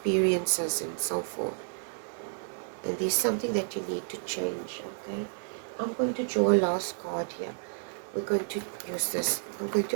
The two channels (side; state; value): left; silent; digital silence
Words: and so forth. And there's something that you need to change. Okay. I'm going to draw a last card here. We're going to use this. I'm going